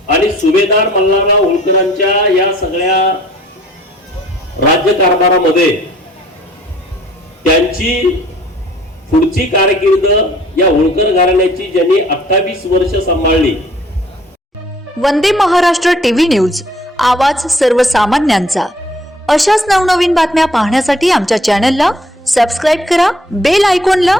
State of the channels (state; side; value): normal; both; correlation 0.57